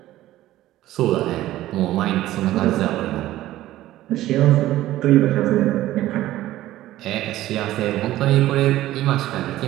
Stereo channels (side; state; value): left; quieter; 14.9 dB